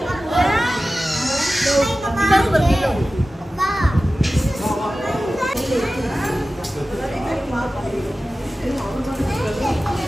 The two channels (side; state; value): both; normal; correlation 0.95